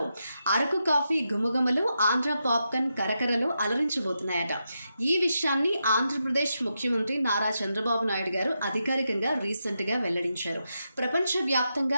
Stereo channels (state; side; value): inverted; both; correlation -0.86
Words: అరకు కాఫీ గుమగుమలు, ఆంధ్ర పాప్కార్న్ కరకరలు అలరించబోతున్నాయట. ఈ విషయాన్ని ఆంధ్రప్రదేశ్ ముఖ్యమంత్రి నారా చంద్రబాబు నాయుడు గారు అధికారికంగా రీసెంట్గా వెల్లడించారు.